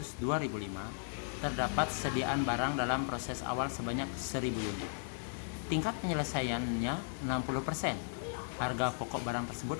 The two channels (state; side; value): silent; right; digital silence